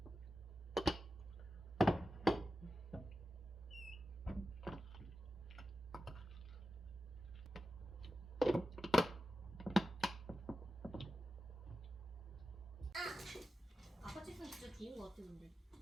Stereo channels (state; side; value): normal; both; correlation 0.92